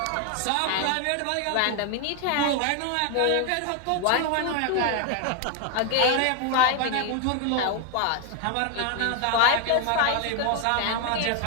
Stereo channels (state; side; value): different; both; correlation 0.01